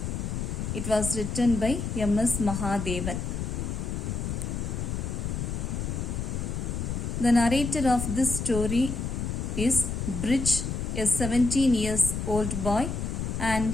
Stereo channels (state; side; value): noise; left; rumble, 3 dB below the sound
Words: It was written by M.S. Mahadevan. The narrator of this story is Bridge, a 17 years old boy, and